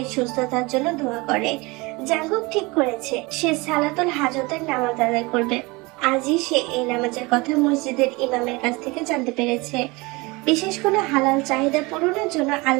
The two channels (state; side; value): quieter; left; 24.8 dB